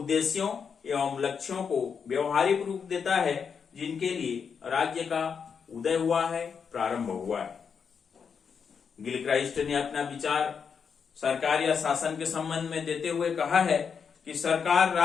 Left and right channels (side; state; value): right; quieter; 6.4 dB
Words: एवं लक्ष्यों को व्यवहारिक रूप देता है जिनके लिए राज्य का उदय हुआ है, प्रारंभ हुआ है। गिलक्राइस्ट ने अपना विचार सरकार या शासन के संबंध में देते हुए कहा है कि सरकार